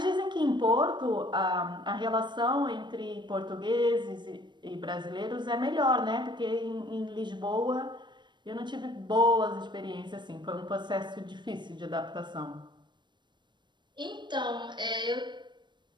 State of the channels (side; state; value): left; late; 0.22 ms